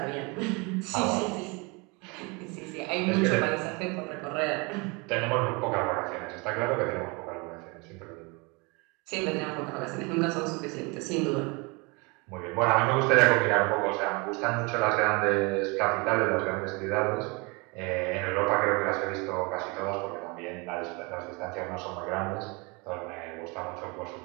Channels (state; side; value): quieter; left; 28.6 dB